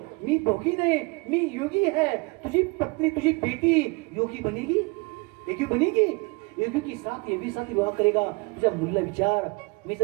मी भोगी नाही, मी योगी है. तुझी पत्नी, तुझी बेटी योगी बनेगी, योगी बनेगी. योगी की साथ योगी साथ विवाह करेगा. तुझ्या मुलीला विचार. मी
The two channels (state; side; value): quieter; left; 28.2 dB